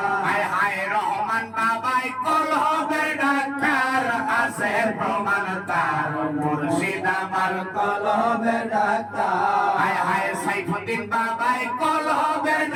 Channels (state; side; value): identical; both; correlation 1.00